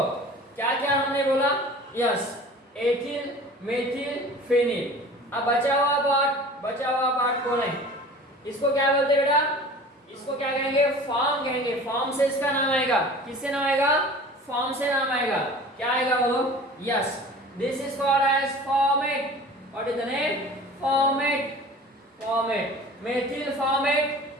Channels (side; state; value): both; normal; correlation 0.42